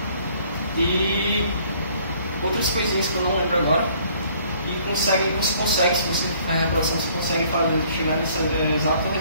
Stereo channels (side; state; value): both; inverted; correlation -0.59